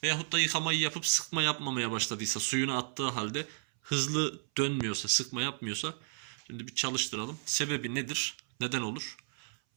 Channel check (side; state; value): left; silent; 56 dB below the other